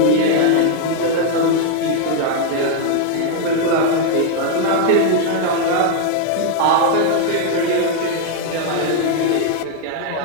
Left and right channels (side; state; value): both; different; correlation 0.00